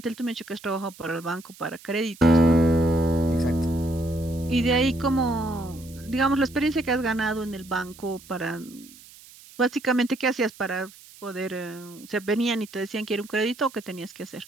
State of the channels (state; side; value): noise; right; hiss, 21 dB below the sound